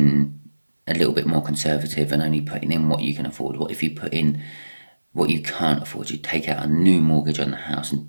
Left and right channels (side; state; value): both; inverted; correlation -1.00